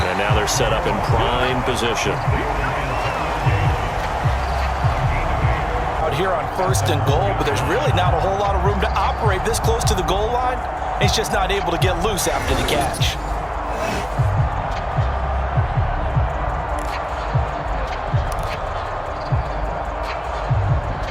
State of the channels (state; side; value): identical; both; correlation 1.00